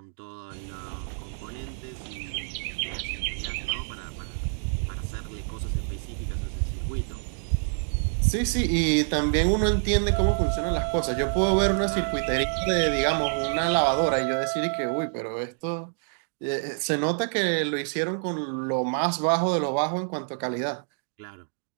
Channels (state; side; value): silent; left; digital silence